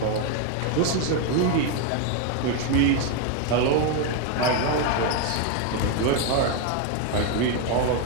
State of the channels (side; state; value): both; different; correlation 0.01